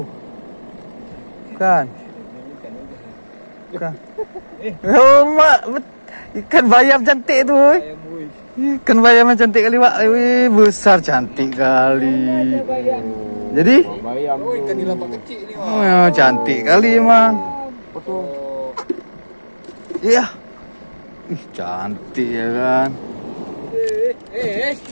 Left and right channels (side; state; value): both; inverted; correlation -1.00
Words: Bukan. Bukan. Oh, mak, ikan bayam cantik tuh. Ikan bayam cantik kali, Pak. Wih, besar cantik kali. Jadi? Bayam. Oh, ikan nila kecil nih, Pak. Oh, cantik kali emang. Betul. Iya. Ih, cantik ya kan.